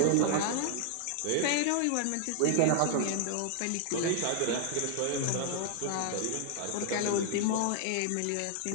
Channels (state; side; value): different; both; correlation 0.00